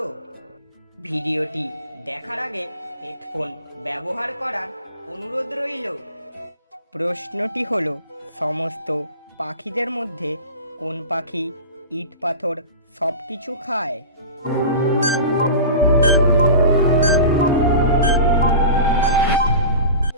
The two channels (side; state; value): both; inverted; correlation -0.33